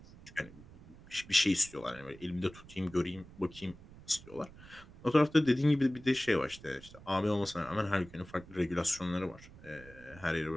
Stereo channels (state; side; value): noise; right; rumble, 19 dB below the sound